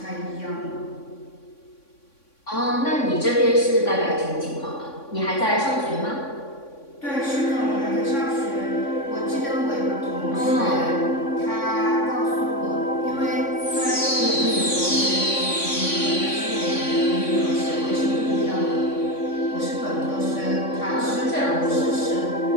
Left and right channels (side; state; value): right; late; 3.6 ms